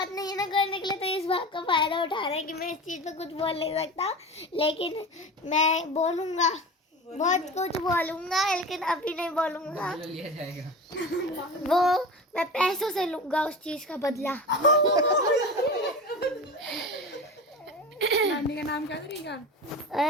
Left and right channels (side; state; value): both; normal; correlation 0.31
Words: नहीं है ना करने के लिए, तो इस बात का फायदा उठा रहे हैं कि मैं इस चीज पे कुछ बोल नहीं सकता, लेकिन मैं बोलूंगा, बहुत कुछ बोलूंगा, लेकिन अभी नहीं बोलूंगा। वो मैं पैसों से लूंगा उस चीज का बदला। नानी का नाम क्या करेगा?